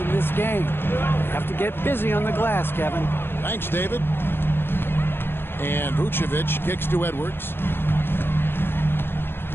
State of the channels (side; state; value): right; late; 0.10 ms